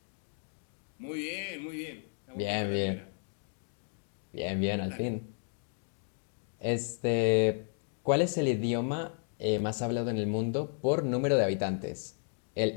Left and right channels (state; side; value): silent; right; 56 dB below the other